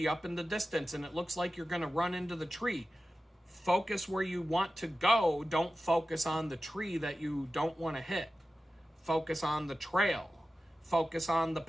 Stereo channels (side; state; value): both; normal; correlation 0.94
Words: up in the distance and it looks like you're going to run into the tree, focus where you want to go. Don't focus on the tree that you don't want to hit. Focus on the trail. Focus on the